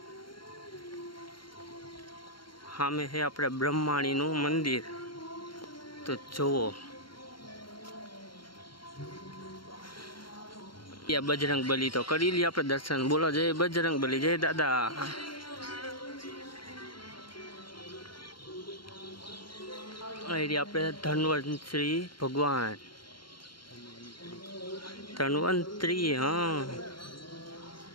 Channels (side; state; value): right; late; 0.73 ms